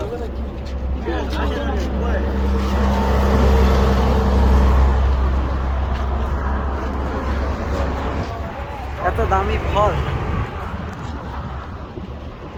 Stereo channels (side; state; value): both; identical; correlation 1.00